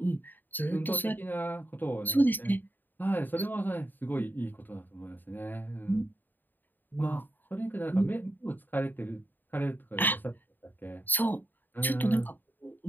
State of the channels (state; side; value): late; right; 0.090 ms